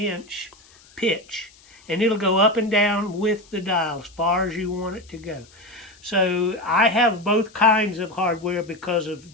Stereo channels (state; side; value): noise; left; hiss, 27 dB below the sound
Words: pitch. And it'll go up and down with the dial as far as you want it to go. So I have both kinds of hardware because of